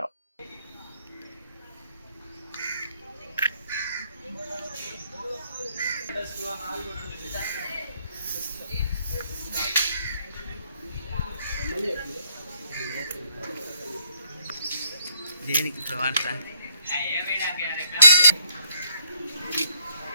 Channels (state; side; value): inverted; both; correlation -0.70